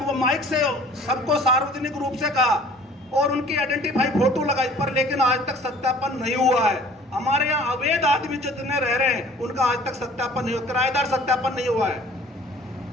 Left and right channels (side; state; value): both; normal; correlation 0.50